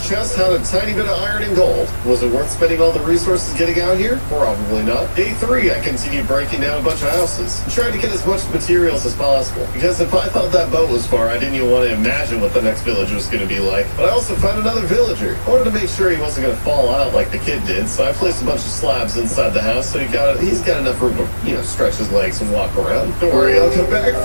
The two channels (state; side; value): inverted; both; correlation -1.00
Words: chest had a tiny bit of iron and gold. Was it worth spending all the resources getting out here? Probably not. Day 3, I continued breaking down a bunch of houses and tried to get as much materials as possible. Because if I thought that boat was far, I didn't even want to imagine what the next village was going to be like. But I also found another villager. I wanted to make sure he wasn't going to fall out like the kid did, so I placed a bunch of slabs inside the house so he's got enough room to, stretch his legs and walk around. Don't worry, I'll come back